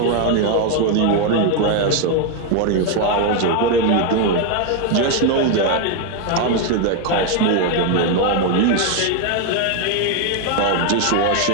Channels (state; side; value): different; both; correlation 0.01